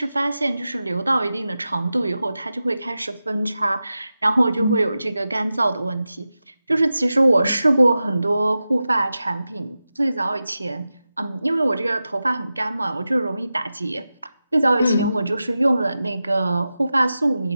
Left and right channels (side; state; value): both; inverted; correlation -0.93